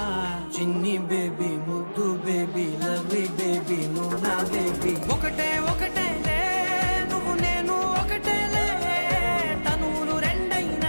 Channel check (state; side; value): inverted; both; correlation -1.00